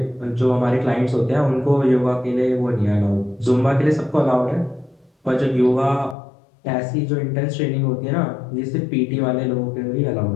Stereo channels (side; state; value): right; drops out; at 6.2 s